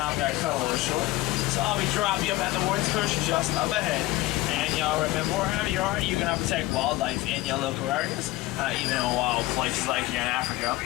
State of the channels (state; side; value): quieter; right; 18.4 dB